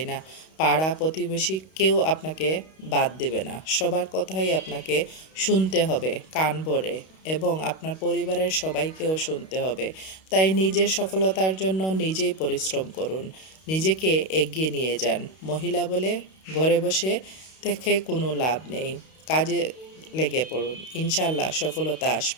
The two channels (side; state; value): right; late; 32 ms